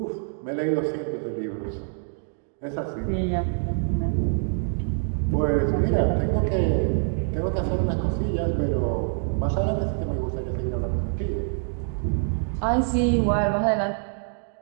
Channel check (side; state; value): left; silent; 61 dB below the other